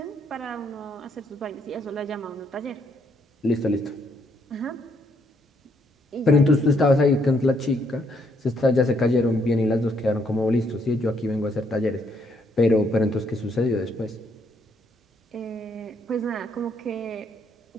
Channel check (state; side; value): normal; both; correlation 0.72